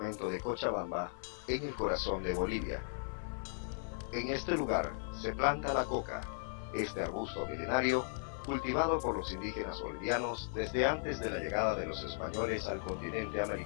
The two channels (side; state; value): right; silent; 53 dB below the other